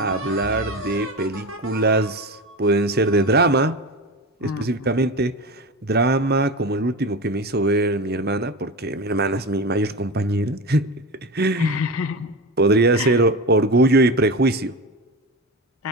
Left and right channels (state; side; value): normal; both; correlation 0.24